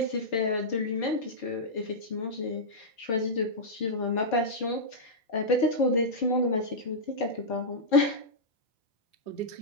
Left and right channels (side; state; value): right; late; 4.6 ms